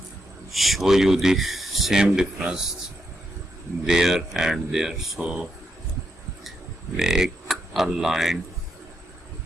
show you the same difference there and there. So make a line,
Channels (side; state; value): both; normal; correlation 0.82